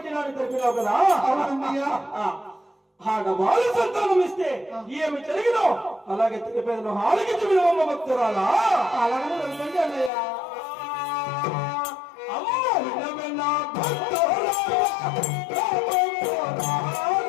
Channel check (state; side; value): drops out; right; at 10.1 s